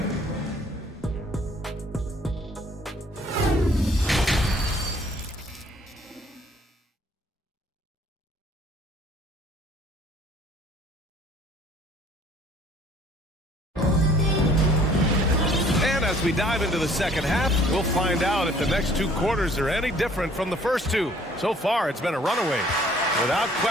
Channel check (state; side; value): normal; both; correlation 0.57